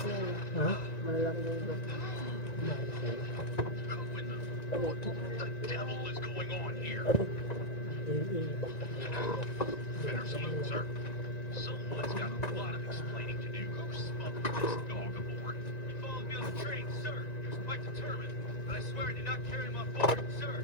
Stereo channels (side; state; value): right; late; 1.9 ms